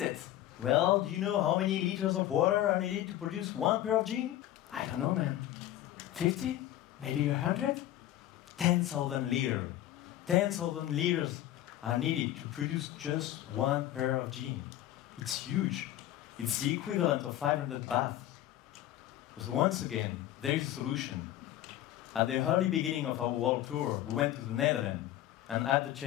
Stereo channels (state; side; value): quieter; right; 13.4 dB